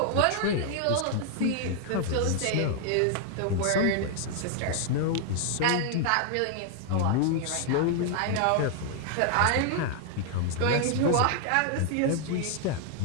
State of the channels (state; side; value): different; both; correlation 0.00